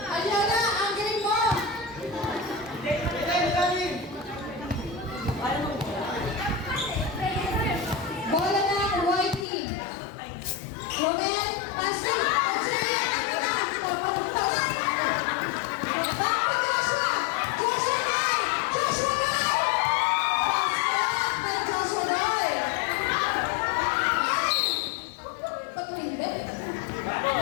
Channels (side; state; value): right; drops out; at 9.5 s